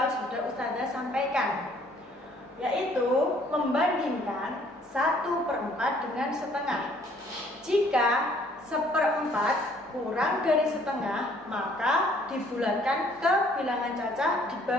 sudah Ustazah sampaikan, yaitu membandingkan 1/4 dengan setengah. Jika 1/4 kurang dari setengah, maka dibulatkan ke bilangan cacah di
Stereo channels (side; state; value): both; normal; correlation 0.61